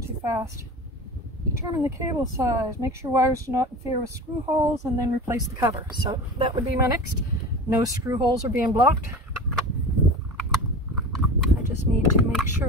too fast. Determine the cable size, make sure wires do not interfere with screw holes, and then replace the cover. So that would be my next. No screw holes are being blocked. I just need to make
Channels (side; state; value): both; normal; correlation 0.33